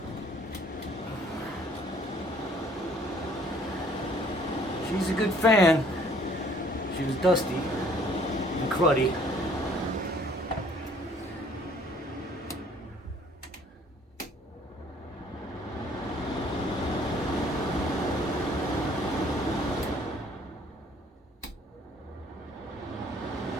She's a good fan. She was dusty and cruddy.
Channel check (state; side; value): normal; both; correlation 0.59